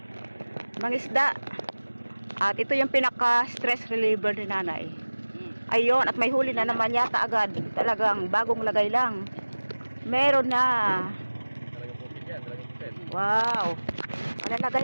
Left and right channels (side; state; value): both; inverted; correlation -1.00